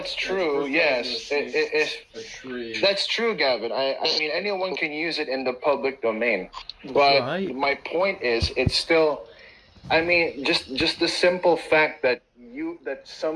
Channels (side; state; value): both; identical; correlation 1.00